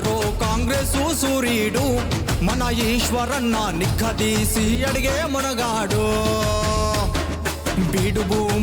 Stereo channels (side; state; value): both; identical; correlation 1.00